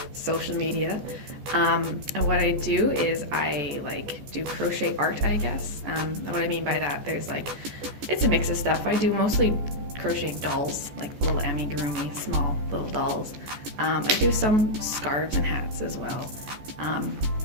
social media. And what I do is I do crochet art, I guess. And what I mean by that, it's a mix of stuff. I do mostly crochet dolls, like little amigurumi, small little dolls. I do some scarves and hats as well.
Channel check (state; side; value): late; left; 14 ms